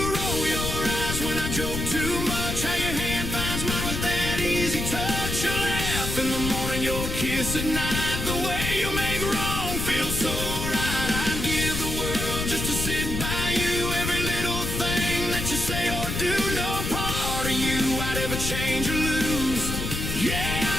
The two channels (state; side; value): noise; left; rumble, 3 dB below the sound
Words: roll your eyes when I joke too much, how your hand finds mine with that easy touch. You laugh in the morning, your kiss at night, the way you make wrong feel so right. I'd give the world just to sit by you, every little thing that you say or do, no part of you I'd ever change or lose. Yeah,